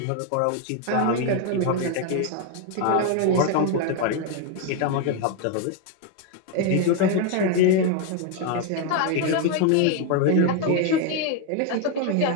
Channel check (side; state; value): both; different; correlation 0.01